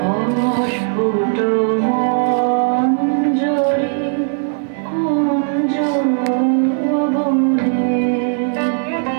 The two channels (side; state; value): left; silent; 57 dB below the other